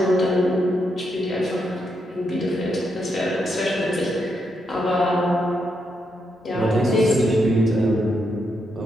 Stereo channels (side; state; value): both; normal; correlation 0.81